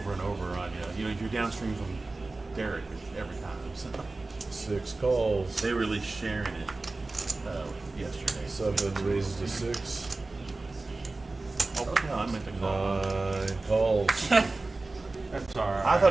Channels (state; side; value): quieter; left; 3.3 dB